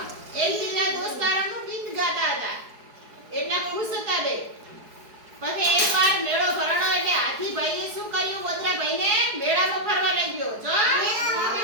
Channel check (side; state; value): left; late; 4.7 ms